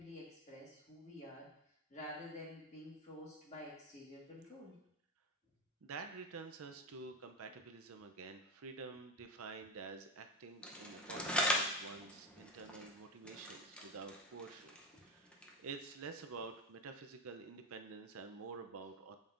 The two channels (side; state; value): both; normal; correlation 0.18